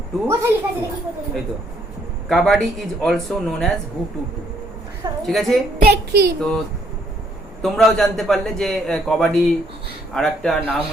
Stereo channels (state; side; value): normal; both; correlation 0.68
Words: টু, এই তো kabaddi is also known as হু টু টু। ঠিক আছে, দেখি তো তোমরাও জানতে পারলে যে কবাডি আর একটা নাম